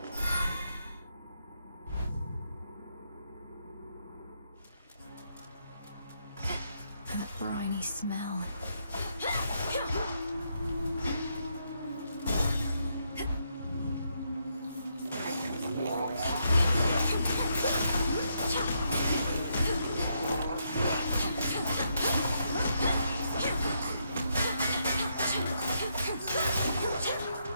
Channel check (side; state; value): both; inverted; correlation -0.78